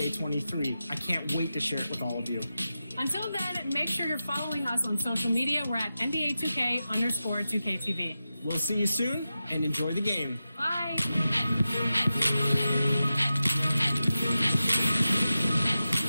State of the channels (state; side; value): inverted; both; correlation -0.92